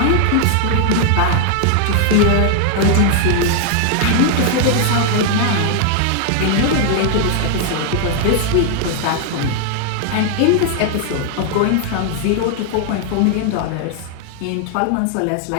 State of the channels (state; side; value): different; both; correlation 0.00